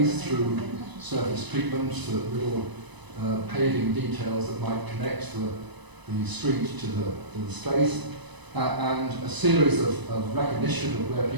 through surface treatment, little paving details that might connect the street to the space, and a series of recognition of where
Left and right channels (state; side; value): late; left; 1.0 ms